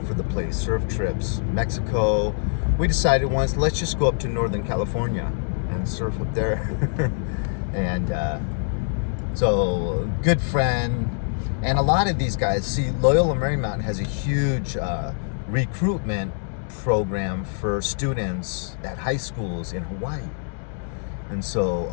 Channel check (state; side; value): silent; right; digital silence